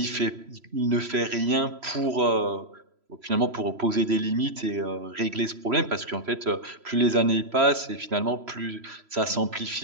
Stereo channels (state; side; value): late; left; 3.0 ms